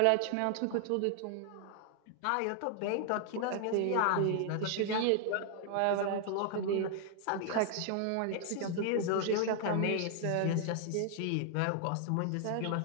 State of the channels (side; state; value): both; different; correlation 0.00